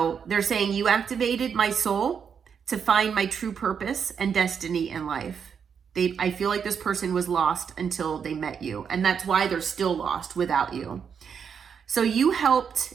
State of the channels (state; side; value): quieter; left; 7.0 dB